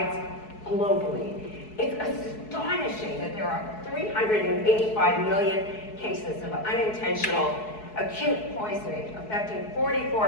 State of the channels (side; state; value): right; late; 4.7 ms